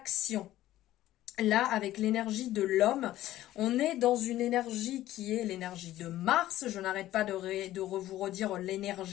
Là, avec l'énergie de l'homme, on est dans une énergie qui est l'énergie de Mars. Je n'arrête pas de vous redire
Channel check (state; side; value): quieter; right; 14.4 dB